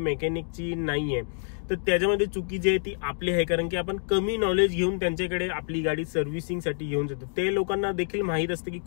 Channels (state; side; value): silent; right; digital silence